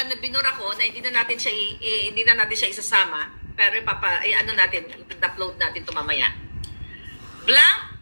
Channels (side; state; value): both; inverted; correlation -1.00